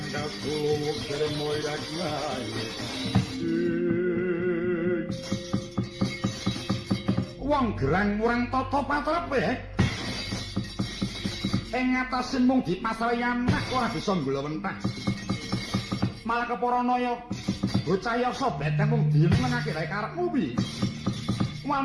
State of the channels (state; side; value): identical; both; correlation 1.00